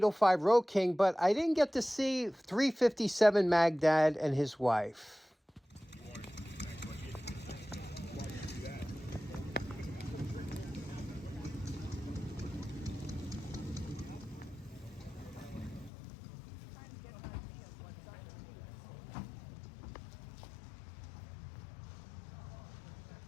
Road King, but I didn't get to see 357 Magdad and his wife.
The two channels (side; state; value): right; drops out; at 15.9 s